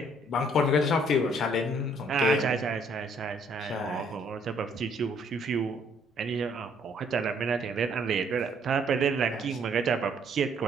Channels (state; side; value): normal; both; correlation 0.64